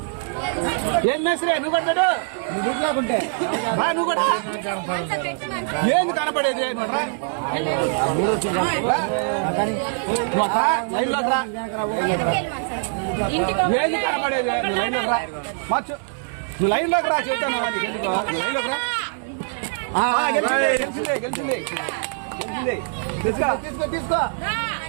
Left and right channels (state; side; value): silent; left; digital silence